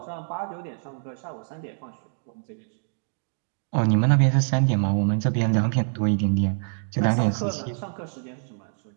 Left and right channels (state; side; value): silent; left; digital silence